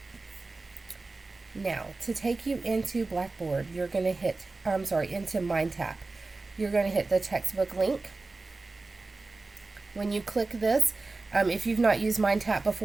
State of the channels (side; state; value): left; quieter; 3.5 dB